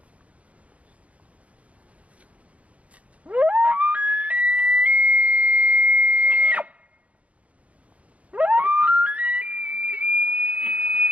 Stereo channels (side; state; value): left; late; 0.065 ms